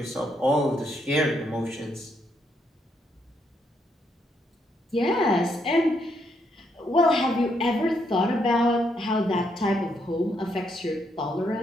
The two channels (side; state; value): both; normal; correlation 0.76